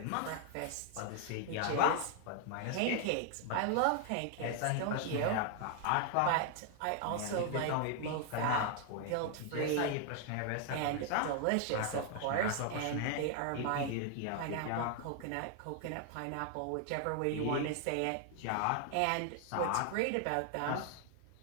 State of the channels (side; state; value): both; different; correlation 0.00